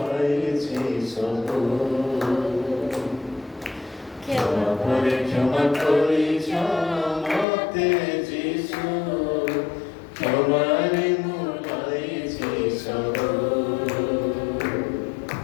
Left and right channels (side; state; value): right; drops out; at 7.5 s